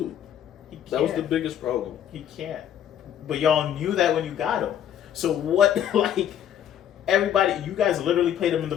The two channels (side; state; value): right; quieter; 10.1 dB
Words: He can't. That was the biggest problem. He can't. But y'all knew that when you got him. So what, like, everybody, you guys literally played him in the